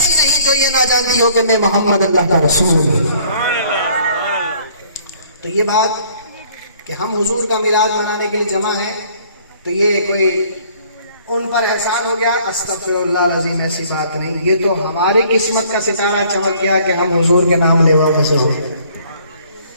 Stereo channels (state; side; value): inverted; both; correlation -0.59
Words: نہیں جو یہ نہ جانتی ہو کہ میں محمد اللہ کا رسول ہوں۔ تو یہ بات کہ ہم حضور کا میلاد منانے کے لیے جمع ہیں تو یہ کوئی ان پر احسان ہو گیا، استغفر اللہ العظیم، ایسی بات نہیں، یہ تو ہماری قسمت کا ستارہ چمک گیا کہ ہم حضور کے نام لیوا میں سے ہو۔